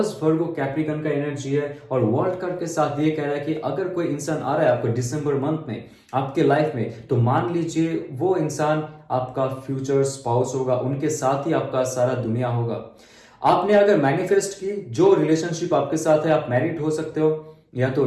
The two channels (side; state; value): both; identical; correlation 1.00